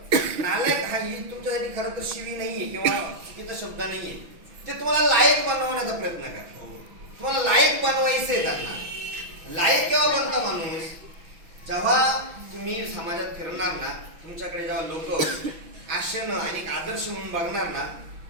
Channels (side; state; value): left; late; 6.1 ms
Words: नालायक हा ही तुमच्यासाठी खरं तर शिवी नाहीये किंवा चुकीचा शब्द नाहीये, ते तुम्हाला लायक बनवण्याचा प्रयत्न करा. तुम्हाला लायक बनवायचंय. त्यांना लायक केव्हा बनता माणूस, जेव्हा तुम्ही समाजात फिरणार ना, तुमच्याकडे जेव्हा लोक आशेनं आणि आदर्श म्हणून बघणार ना,